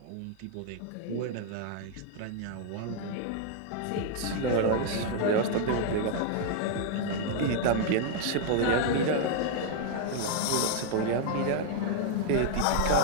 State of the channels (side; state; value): both; different; correlation 0.00